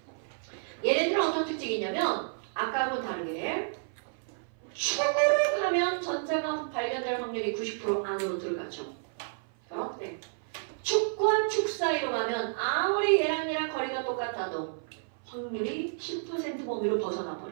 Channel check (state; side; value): silent; left; 56 dB below the other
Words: 얘네들은 어떤 특징이 있냐면 아까하고 다르게 축으로 가면 전자가 발견될 확률이 90% 안으로 들어가죠. 그런데 축과 축 사이로 가면 아무리 얘랑 거리가 똑같아도 확률이 10% 범위로 벗어나